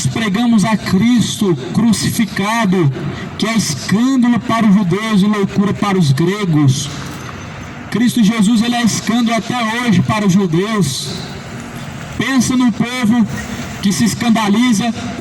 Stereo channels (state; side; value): identical; both; correlation 1.00